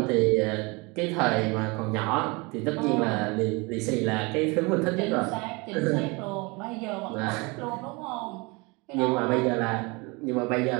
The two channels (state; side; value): quieter; left; 27.1 dB